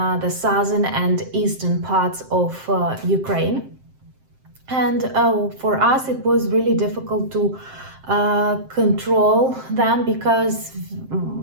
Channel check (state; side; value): late; left; 7.7 ms